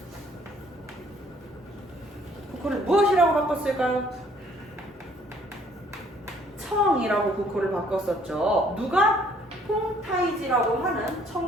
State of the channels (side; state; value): both; normal; correlation 0.61